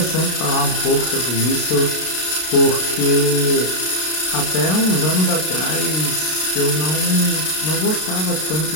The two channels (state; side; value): late; right; 32 ms